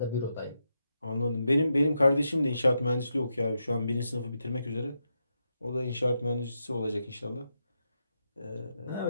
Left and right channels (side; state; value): both; inverted; correlation -0.85